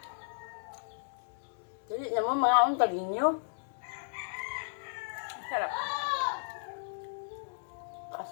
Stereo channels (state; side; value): silent; right; digital silence